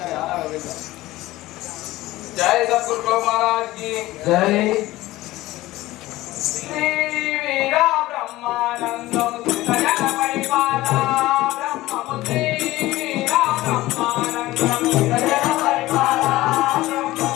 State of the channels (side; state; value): right; quieter; 17.5 dB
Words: జై సద్గురు మహారాజ్ కి జై. శ్రీ వీర బ్రహ్మానందం సుతజన పరిపాల బ్రహ్మము శ్రీ వీర బ్రహ్మానందం సుతజన పరిపాల బ్రహ్మము